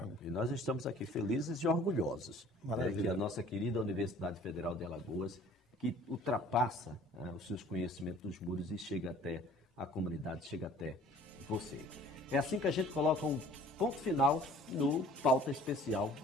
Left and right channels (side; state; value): both; normal; correlation 0.51